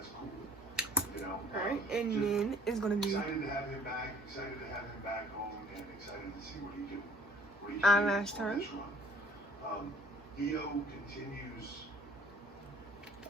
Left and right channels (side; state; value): both; normal; correlation 0.55